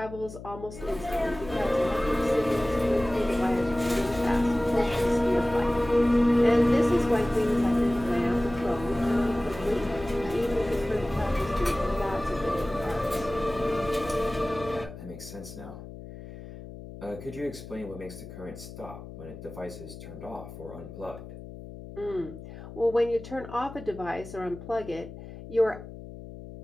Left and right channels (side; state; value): left; noise; hum, 13 dB below the sound